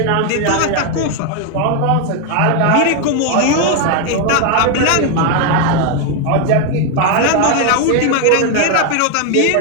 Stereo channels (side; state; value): both; different; correlation 0.01